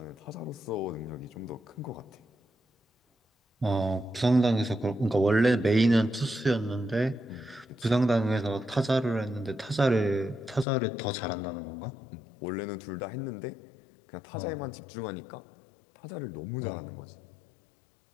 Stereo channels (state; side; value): drops out; right; at 10.7 s